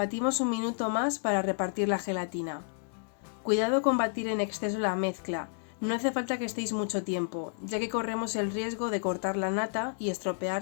un minuto más para repartir la gelatina. Cuidado con batir en exceso la mezcla, no hace falta que estéis mucho tiempo, ya que corremos el riesgo de cortar la nata y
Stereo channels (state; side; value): silent; right; digital silence